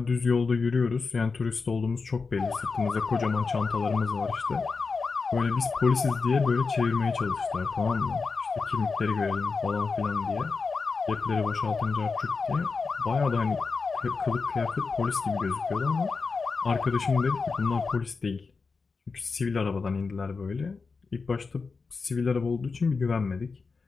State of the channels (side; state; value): right; quieter; 4.6 dB